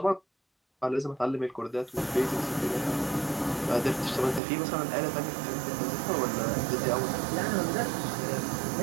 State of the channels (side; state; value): left; drops out; at 4.4 s